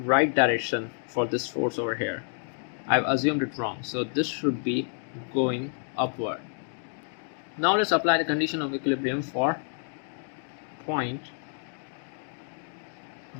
direction for this force over here. I've assumed it wrong, so this should be going upward. Now let's apply the condition of equilibrium for point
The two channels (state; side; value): silent; right; 55 dB below the other